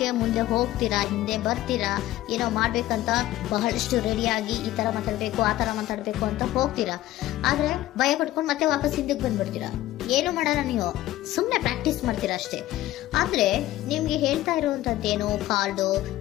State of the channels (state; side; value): quieter; right; 15.1 dB